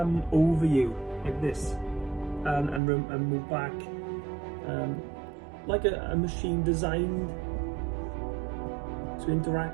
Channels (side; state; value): left; drops out; at 2.8 s